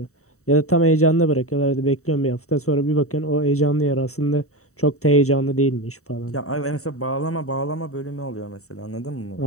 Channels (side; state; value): right; late; 0.64 ms